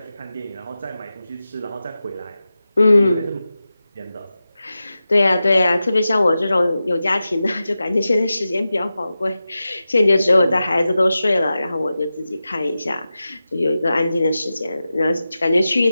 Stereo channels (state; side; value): inverted; both; correlation -0.93